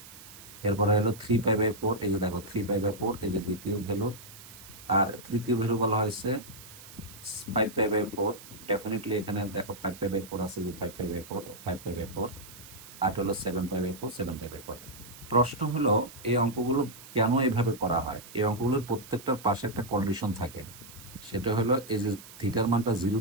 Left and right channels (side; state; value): right; noise; hiss, 17 dB below the sound